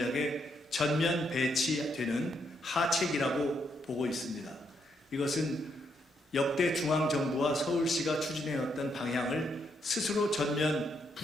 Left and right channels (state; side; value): normal; both; correlation 0.77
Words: 전면 배치되는 하책이라고 보고 있습니다. 이것은 역대 중앙정부와 서울시가 추진해왔던 방향을 스스로 전면